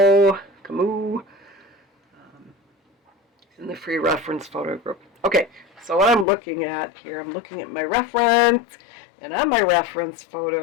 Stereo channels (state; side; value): drops out; right; at 6.2 s